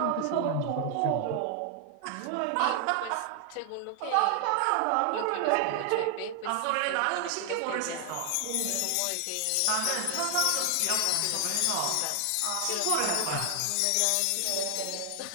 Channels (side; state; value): both; different; correlation 0.00